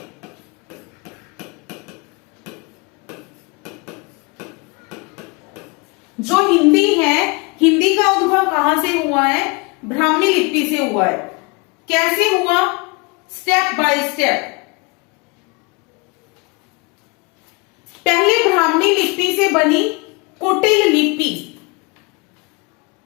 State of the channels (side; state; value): right; quieter; 28.3 dB